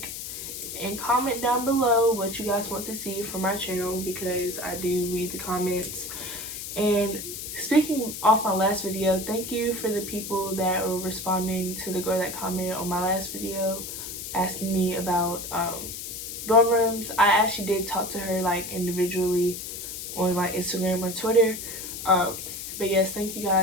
and comment down below what you guys want to see from my channel, because I do read the comments. And speaking off my last video, thank you for the people that were responding to the girl that commented on my last video asking me about dorm rooms. I actually did talk to her like individually on like Instagram or Twitter. But yes, thank you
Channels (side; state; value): left; noise; hiss, 8 dB below the sound